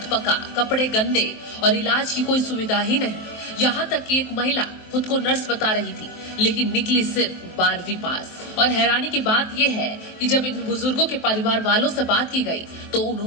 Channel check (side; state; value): right; late; 23 ms